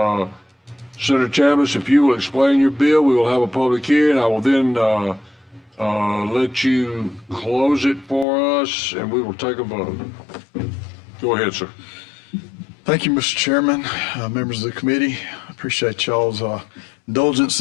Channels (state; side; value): drops out; right; at 8.2 s